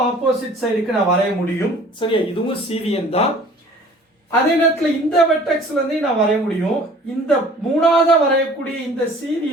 ஆப்போசிட் சைடுக்கு நான் வரைய முடியும். சரியா, இதுவும் சீவியன் தான். அதே நேரத்தில் இந்த வெர்டெக்ஸ்ல இருந்து நான் வரைய முடியும். இந்த மூணாவதா வரையக்கூடிய இந்த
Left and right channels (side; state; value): both; normal; correlation 0.50